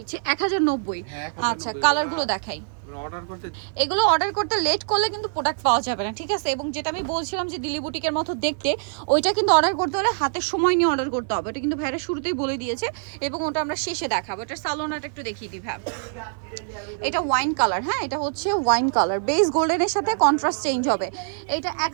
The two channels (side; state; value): left; silent; 56 dB below the other